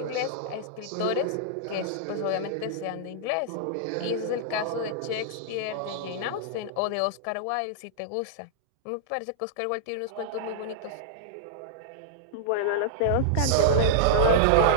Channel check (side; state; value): both; different; correlation -0.02